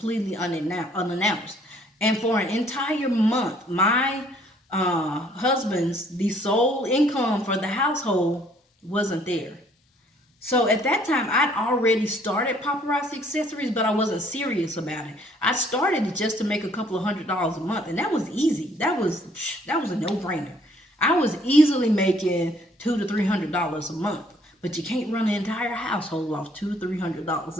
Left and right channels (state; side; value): normal; both; correlation 0.62